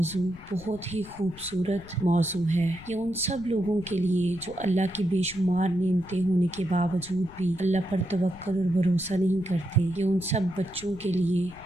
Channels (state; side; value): noise; left; rumble, 19 dB below the sound